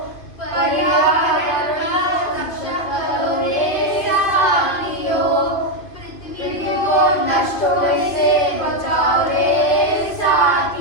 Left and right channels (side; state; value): right; late; 2.5 ms